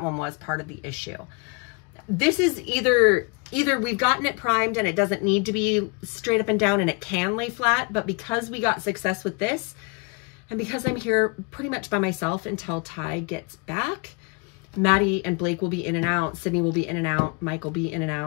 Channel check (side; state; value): right; quieter; 31.7 dB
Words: one was part of the issue. This is either we've gotten it primed and it doesn't need to be straight up and down and it can lay flat, but because we got success with this, and because I'm here pretty much by myself until Ty gets back, Maddie and Blake will be in and out, Sydney will be in and out, Mike will be in and